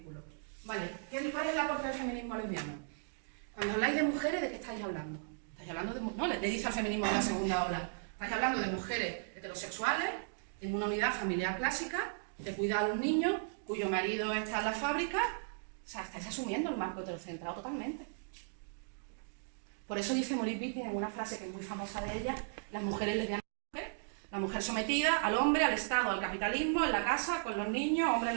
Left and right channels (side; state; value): left; silent; digital silence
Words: Vale, ¿cuál es el aporte del feminismo lesbiano? Cuando habláis de mujeres, ¿de qué estáis hablando? ¿Estáis hablando de no, le dice al feminismo de la segunda ola. Estáis hablando de mujeres heterosexuales, en una unidad familiar clásica, de cuidar a los niños, cuyo marido está en la fábrica. O sea, estáis asumiendo el marco heterocentrado totalmente. Por eso dice Monique Wittig en una frase que es muy famosa de ella, las mujeres lesbianas, la mujer sometida al hombre, al Estado, al capitalismo, en la casa, con los niños, hombre en